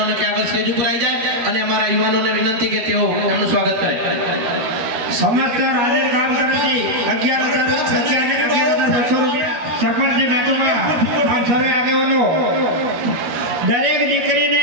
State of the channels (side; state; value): left; late; 13 ms